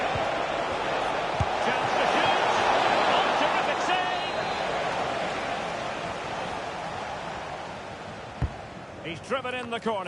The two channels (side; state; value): both; identical; correlation 1.00